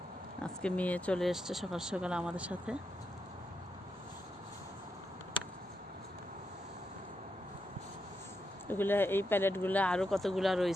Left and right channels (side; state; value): both; normal; correlation 0.84